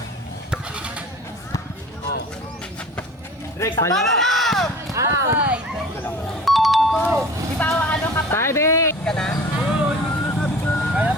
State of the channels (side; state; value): both; normal; correlation 0.42